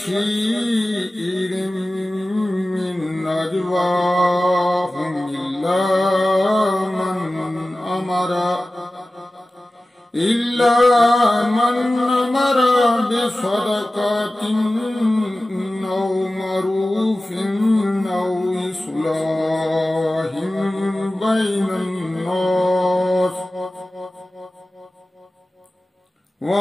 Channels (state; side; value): normal; both; correlation 0.96